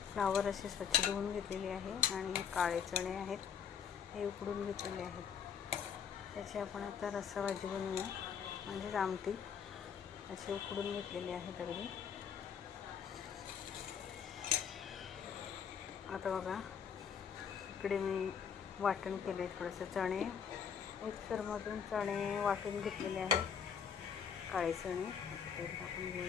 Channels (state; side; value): quieter; right; 7.4 dB